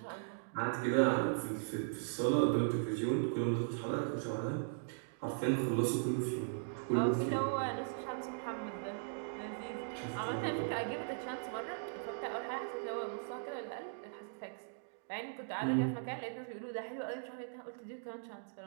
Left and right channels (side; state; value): left; silent; digital silence